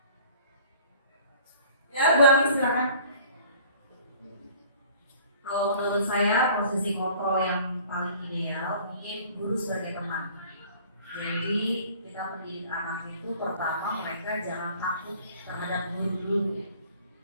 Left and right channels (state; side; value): inverted; both; correlation -0.50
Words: Ya, Bu Ami silakan. Kalau menurut saya posisi kontrol yang paling ideal mungkin guru sebagai teman. Jadi kita mendidik anak itu pertama mereka jangan takut terhadap guru dulu.